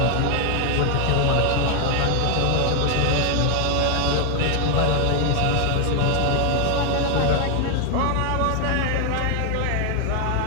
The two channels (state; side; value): different; both; correlation 0.00